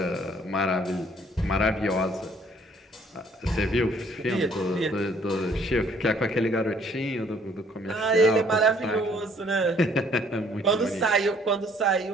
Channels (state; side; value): normal; both; correlation 0.61